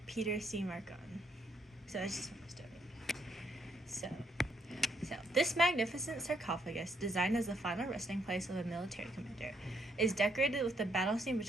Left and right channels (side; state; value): both; normal; correlation 0.72